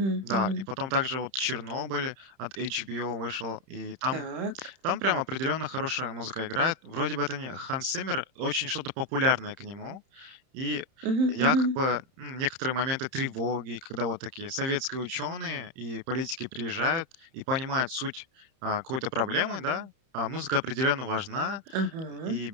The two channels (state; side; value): late; left; 31 ms